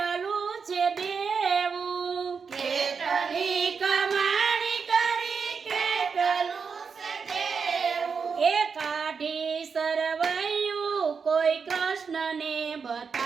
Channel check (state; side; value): quieter; left; 5.7 dB